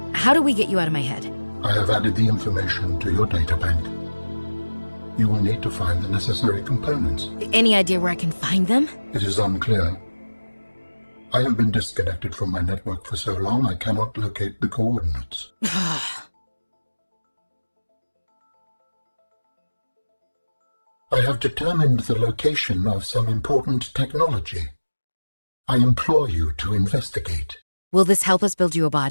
How do we get you out of my head? I have added the information to your databank. You will need to find the necessary components. Any idea where I can find them? It is unclear. I have been disconnected from my network for so long I cannot locate the coordinates. I have determined the location of some important technology. I implore you to investigate. Will this help us build you a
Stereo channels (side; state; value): both; inverted; correlation -1.00